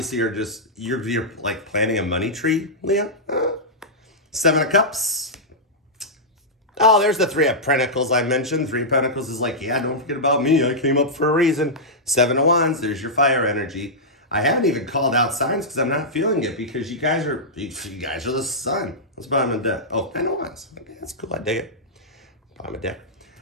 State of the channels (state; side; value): normal; both; correlation -0.10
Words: are just, you're like planting a money tree, Leo. Seven of Cups. Oh, there's the Three of Pentacles I mentioned. Three of Pentacles is like, yeah, don't forget about me. I came up for a reason. Seven of Wands, there's your fire energy. I haven't even called out signs because I'm not feeling it because you guys are the sun. That's bottom of the deck. Oh, 10 of Wands. Okay, that's cool. I dig it. Bottom of the deck.